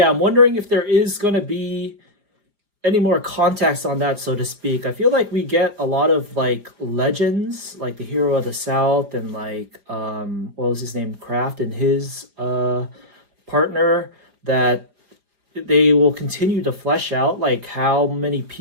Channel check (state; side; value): late; left; 4.9 ms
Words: I'm wondering if there is going to be any more context on that, so to speak. I feel like we get a lot of like legends, like the hero of the South and like what was his name, Kraft, and his partner, that they will continue to flesh out like how many